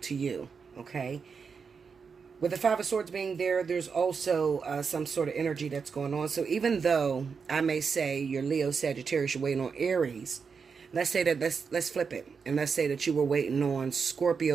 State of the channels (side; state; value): left; quieter; 5.7 dB